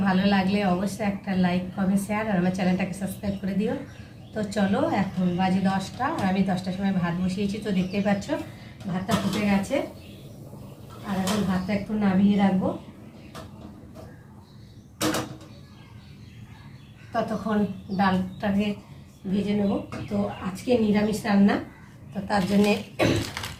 ভালো লাগলে অবশ্যই একটা লাইক, কমেন্ট, শেয়ার আর আমার চ্যানেলটাকে সাবস্ক্রাইব করে দিও। তো চলো, এখন বাজে 10টা আর আমি 10টার সময় ভাত বসিয়েছি। তো দেখতেই পাচ্ছ ভাতটা ফুটে গেছে। আর এখন ভাতটা একটু নামিয়ে রাখবো, ততক্ষণ ডালটাকে ভেজে নেব। তো আজকে নিরামিষ রান্না, তো তার জন্যে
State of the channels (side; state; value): both; identical; correlation 1.00